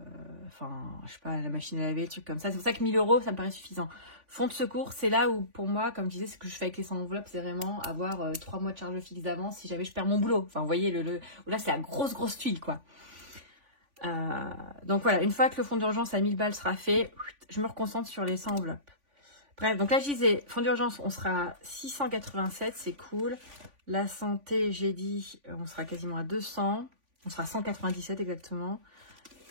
Enfin, je sais pas, la machine à laver, le truc comme ça. C'est pour ça que 1000 €, ça me paraît suffisant. Fonds de secours, c'est là où, pour moi, comme je disais, ce que je fais avec les 100 enveloppes, c'est vraiment avoir 3 mois de charge fixe d'avance si jamais je perds mon boulot. Enfin, vous voyez, là, c'est la grosse tuile, quoi. Donc voilà, une fois que le fonds d'urgence à 1000 balles sera fait, je me reconcentre sur les 100 enveloppes. Bref, donc là, je disais, fonds d'urgence, on sera à 687, c'est cool. La santé, j'ai dit, on sera quasiment à 200. On sera à 197 exactement.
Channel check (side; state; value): left; late; 3.5 ms